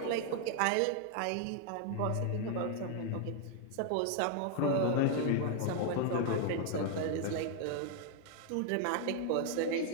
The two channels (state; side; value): different; both; correlation 0.00